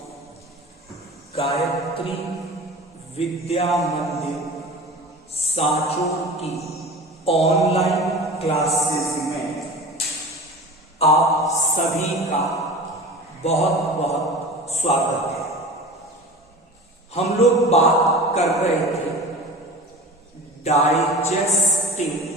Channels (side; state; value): both; normal; correlation 0.36